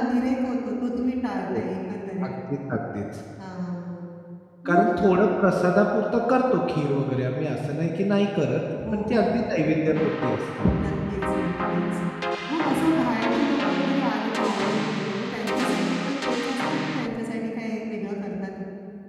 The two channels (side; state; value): both; identical; correlation 1.00